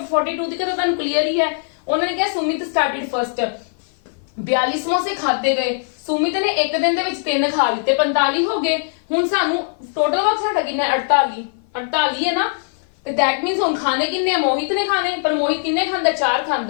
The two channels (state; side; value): silent; right; 55 dB below the other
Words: ਦੀ ਤਾਂ ਤੁਹਾਨੂੰ ਕਲੀਅਰ ਹੀ ਹੈ। ਉਹਨਾਂ ਨੇ ਕਿਹਾ ਸੁਮਿਤ ਸਟਾਰਟਡ ਫਰਸਟ 42 ਸਮੋਸੇ ਖਾਦੇ ਗਏ ਸੁਮਿਤ ਨੇ ਇੱਕ ਦਿਨ ਦੇ ਵਿੱਚ 3 ਖਾ ਲਿੱਤੇ 45 ਹੋ ਗਏ। ਹੁਣ ਸਾਨੂੰ ਟੋਟਲ ਵਕਤ ਸਾਡਾ ਕਿੰਨਾ 48 ਹੈ ਨਾ ਤੇ ਦੈਟ ਮੀਨਸ ਹੁਣ ਖਾਣੇ ਕਿੰਨੇ ਮੋਹਿਤ ਨੇ ਖਾਣੇ ਪਰ ਮੋਹਿਤ ਕਿੰਨੇ ਖਾਂਦਾ 4